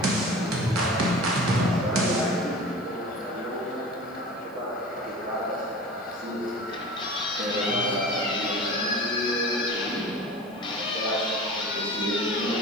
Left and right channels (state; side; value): noise; right; hiss, 29 dB below the sound